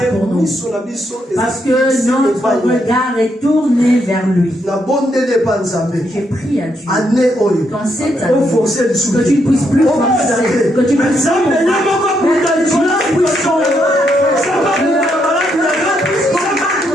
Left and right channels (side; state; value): both; normal; correlation 0.77